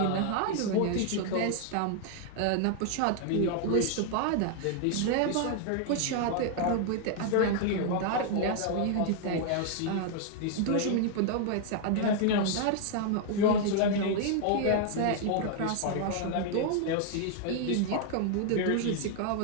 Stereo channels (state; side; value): different; both; correlation 0.00